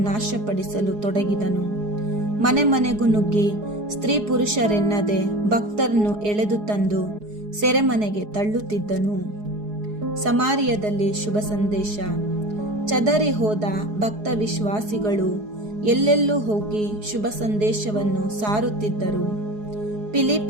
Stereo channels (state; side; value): late; left; 4.8 ms